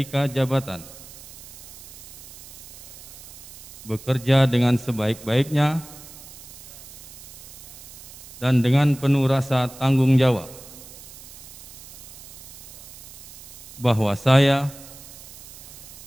jabatan, bekerja dengan sebaik-baiknya dan dengan penuh rasa tanggung jawab, bahwa saya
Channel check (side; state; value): right; noise; hiss, 17 dB below the sound